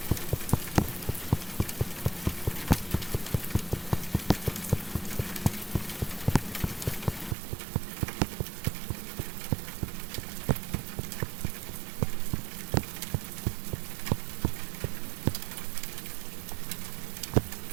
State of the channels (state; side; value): drops out; left; at 7.4 s